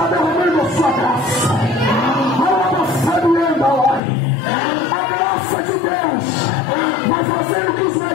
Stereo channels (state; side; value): drops out; right; at 4.0 s